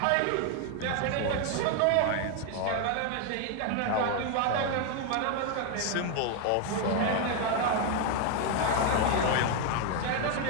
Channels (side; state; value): both; different; correlation 0.01